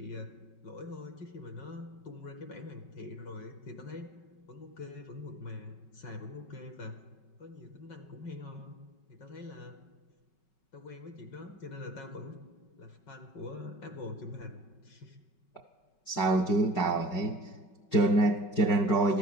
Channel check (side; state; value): right; late; 5.4 ms